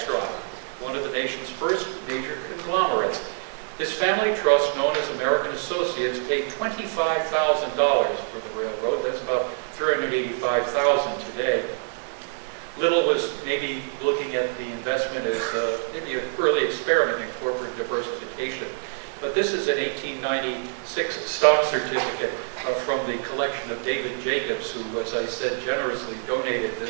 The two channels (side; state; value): left; silent; 61 dB below the other